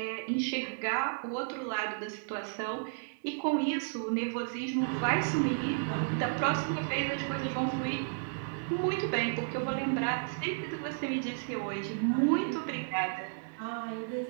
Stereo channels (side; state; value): left; silent; digital silence